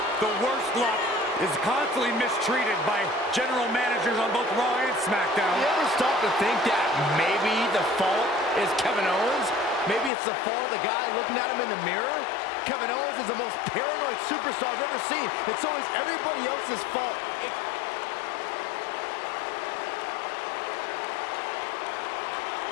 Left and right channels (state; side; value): drops out; right; at 10.1 s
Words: the worst luck, is constantly mistreated by general managers on both Raw and SmackDown. You ever stop to think that maybe the fault is Kevin Owens? Maybe it's the fault of the guy looking at him in the mirror? Kevin Owens is the most paranoid superstar I've ever seen. It's always everybody else's fault.